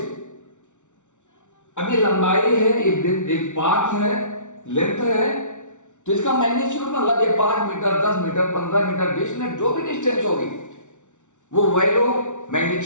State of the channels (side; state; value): right; late; 0.85 ms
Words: अब ये लंबाई है, एक पाथ है, लेंथ है, तो इसका मैग्नीट्यूड मतलब ये 5 मीटर, 10 मीटर, 15 मीटर, 20 मीटर, जो भी डिस्टेंस होगी वो वैल्यू